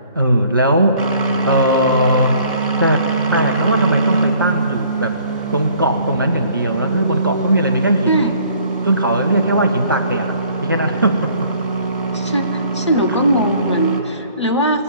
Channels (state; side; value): inverted; both; correlation -0.57